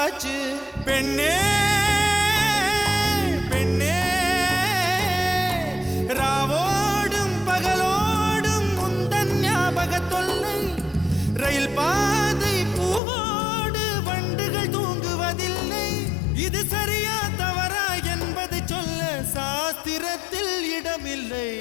பெண்ணே பெண்ணே ராவோடும் பகலோடும் உந்தன் ஞாபக தொல்லை ரயில் பாதை பூவோடு வண்டுகள் தூங்குவதில்லை இது சரியா தவறா என்பதை சொல்ல சாஸ்திரத்தில் இடமில்லை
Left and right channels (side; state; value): right; drops out; at 13.0 s